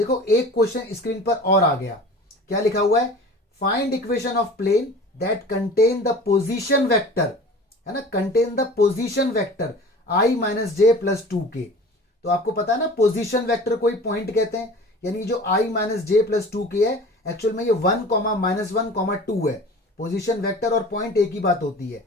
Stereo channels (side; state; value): both; normal; correlation 0.41